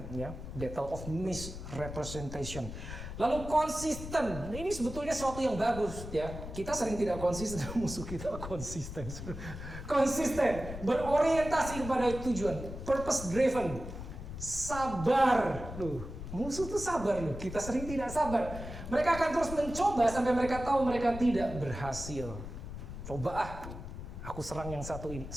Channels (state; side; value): noise; left; rumble, 9 dB below the sound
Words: battle of misrepresentation. Lalu konsisten, ini sebetulnya sesuatu yang bagus ya. Kita sering tidak konsisten, musuh kita konsisten. Konsisten, berorientasi kepada tujuan, purpose driven, sabar. Musuh tuh sabar loh. Kita sering tidak sabar. Mereka akan terus mencoba sampai mereka tahu mereka tidak berhasil. Coba aku serang yang satu ini,